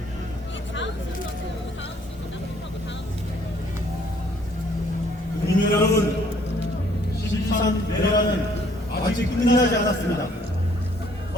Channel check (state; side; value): normal; both; correlation 0.62